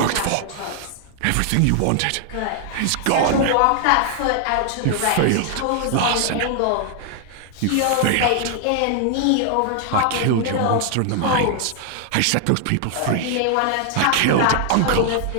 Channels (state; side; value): different; both; correlation 0.00